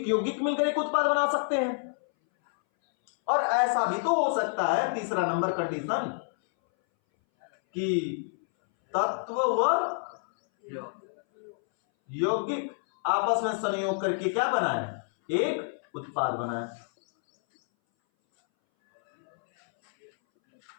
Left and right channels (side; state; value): right; silent; 59 dB below the other